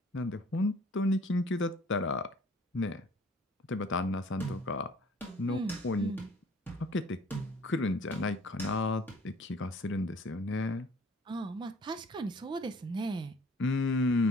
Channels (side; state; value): both; normal; correlation 0.54